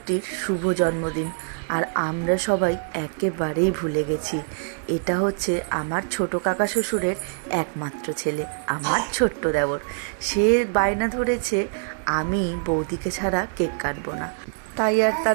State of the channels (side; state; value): left; silent; digital silence